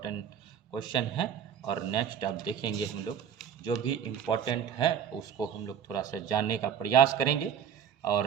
क्वेश्चन है। और नेक्स्ट अब देखेंगे हम लोग जो भी इम्पोर्टेंट है उसको हम लोग थोड़ा सा जानने का प्रयास करेंगे।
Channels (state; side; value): quieter; left; 8.5 dB